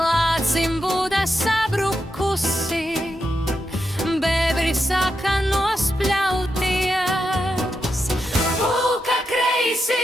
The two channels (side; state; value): both; normal; correlation 0.86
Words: būda sabrukusi, bēbri sāka nospļauties. Pūka